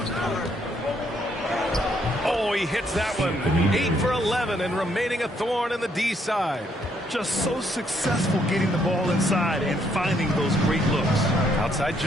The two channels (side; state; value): both; normal; correlation 0.71